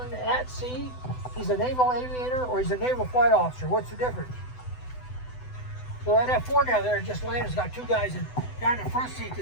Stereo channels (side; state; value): right; late; 8.0 ms